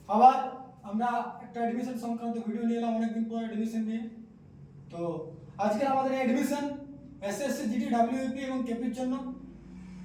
আবার আমরা একটা অ্যাডমিশন সংক্রান্ত ভিডিও নিয়ে এলাম অনেকদিন পর অ্যাডমিশন নিয়ে। তো আজকে আমাদের অ্যাডমিশন এসএসসি জিডি ডাব্লিউপি এবং কেপির জন্য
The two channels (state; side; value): identical; both; correlation 1.00